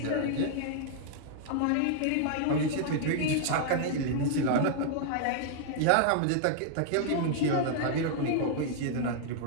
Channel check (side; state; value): both; different; correlation -0.01